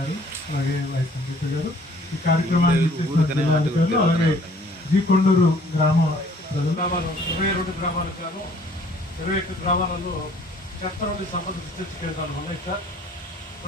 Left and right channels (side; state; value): both; normal; correlation 0.57